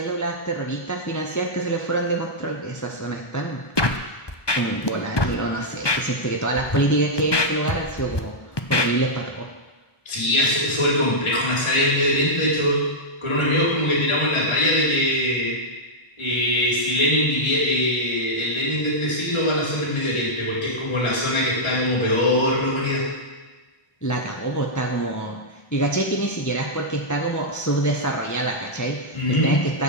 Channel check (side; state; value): right; late; 1.2 ms